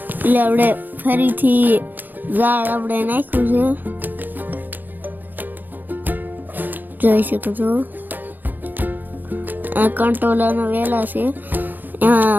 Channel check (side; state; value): left; late; 0.087 ms